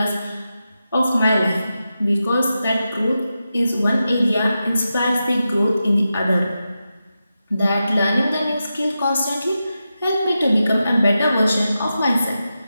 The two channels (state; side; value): inverted; both; correlation -0.90